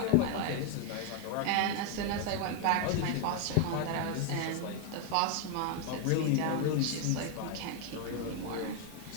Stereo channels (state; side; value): different; both; correlation 0.01